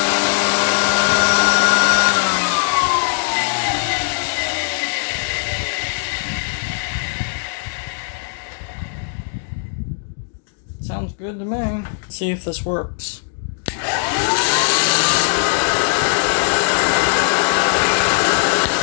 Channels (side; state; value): right; silent; digital silence